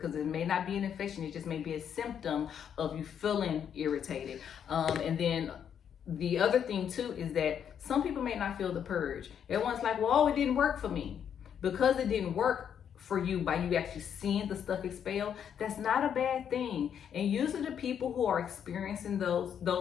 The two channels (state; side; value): quieter; right; 8.5 dB